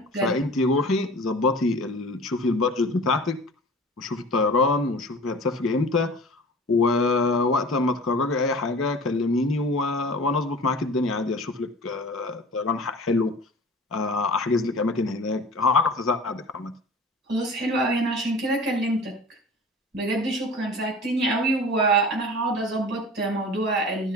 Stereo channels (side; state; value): both; normal; correlation 0.40